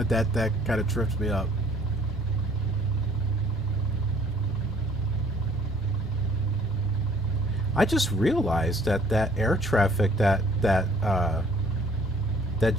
That kind of trips me up. I just realized that air traffic, that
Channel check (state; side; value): normal; both; correlation 0.58